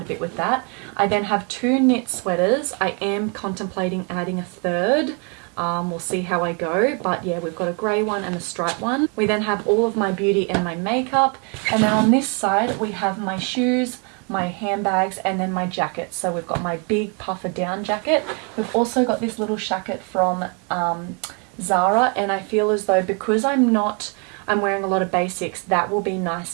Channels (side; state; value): left; quieter; 36.3 dB